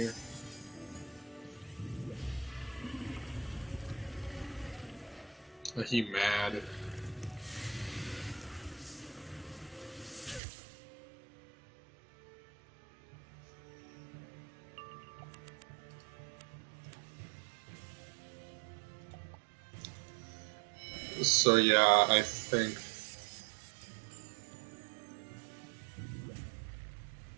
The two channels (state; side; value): drops out; left; at 10.4 s